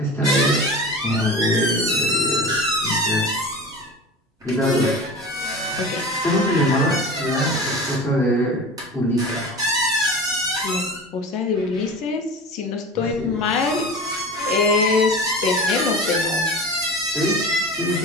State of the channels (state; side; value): normal; both; correlation 0.33